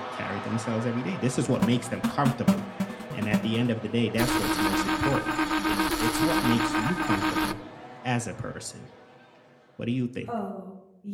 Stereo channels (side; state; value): both; identical; correlation 1.00